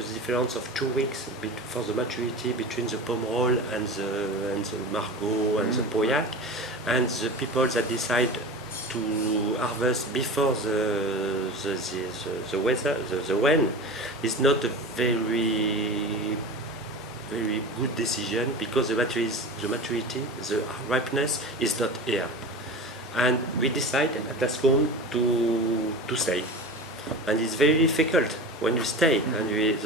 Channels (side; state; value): both; normal; correlation 0.31